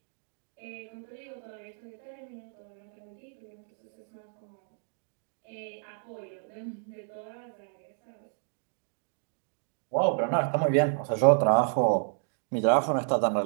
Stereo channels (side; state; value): left; silent; digital silence